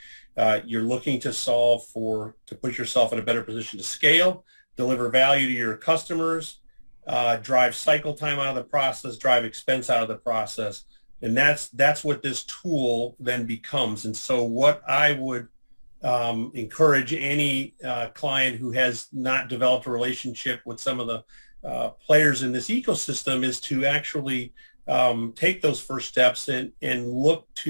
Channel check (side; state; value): both; inverted; correlation -1.00